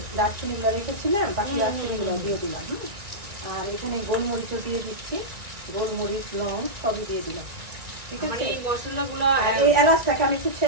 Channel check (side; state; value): left; late; 1.9 ms